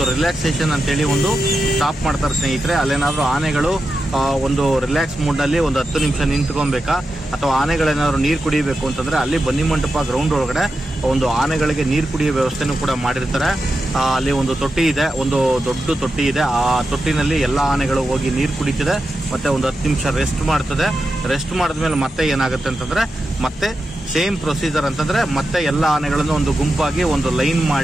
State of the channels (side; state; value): both; normal; correlation 0.89